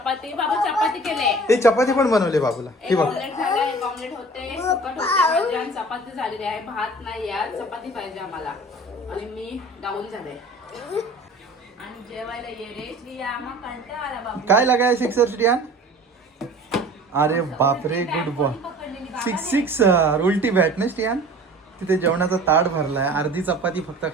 बाबा चपाती केले. ते चपाती पण बनवले बाबूला. हे बघ ऑमलेट होते, सुकट होते आणि चपाती झालेली आहे. भात नाही यार, चपाती पाहिजे आम्हाला. आणि मी डाऊन झाले. आणि जेवायला ये रे श्रिया, आम्हाला कंटाळा आला बाबा. काय लगाय सिक्सर श्रियान? अरे बापरे, गुड बॉय. सिक्सर. उलटी बॅट ना श्रियान. तिथे जेवणाचा ताट भरलाय, अर्धी चपाती फक्त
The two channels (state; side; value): normal; both; correlation 0.44